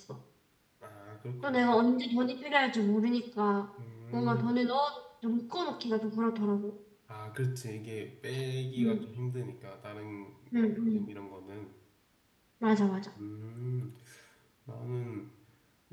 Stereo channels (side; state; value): both; identical; correlation 1.00